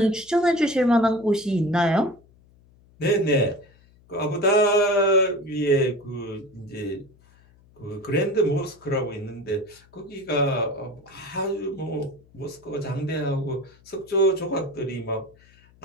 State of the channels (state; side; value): noise; left; hum, 29 dB below the sound